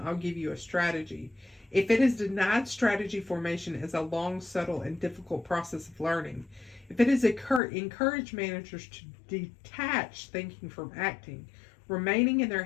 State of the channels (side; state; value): right; drops out; at 7.6 s